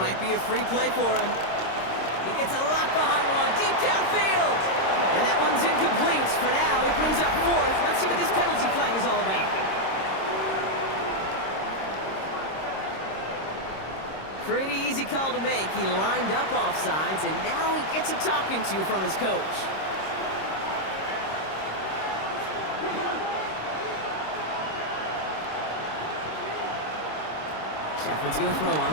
might be a free play for him. He gets a lot behind one, deep downfield. And that one's incomplete. For now, it brings up 4th. Let's see what this penalty flag is all about. Pretty easy call to make. He lined up offsides, and now he gets a talking to from his coach. Shepard's going to throw on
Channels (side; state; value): right; late; 26 ms